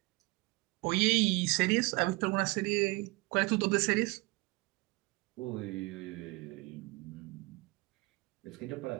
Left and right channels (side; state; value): left; quieter; 25.1 dB